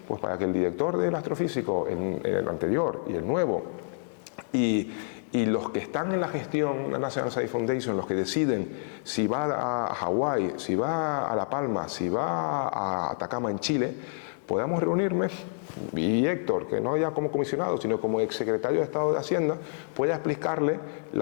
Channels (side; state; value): right; silent; 59 dB below the other